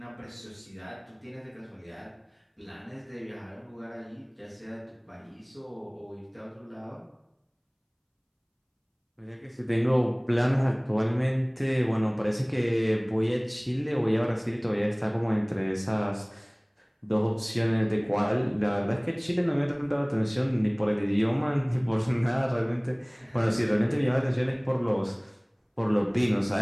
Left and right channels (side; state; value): both; identical; correlation 1.00